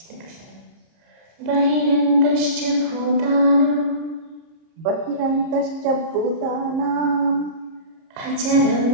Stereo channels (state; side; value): late; left; 30 ms